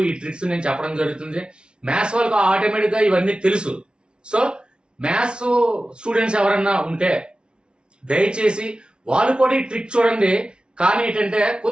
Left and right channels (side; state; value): left; late; 0.056 ms